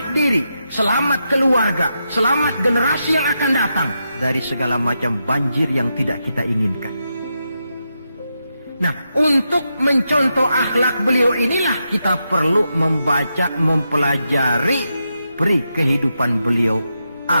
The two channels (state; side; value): inverted; both; correlation -0.86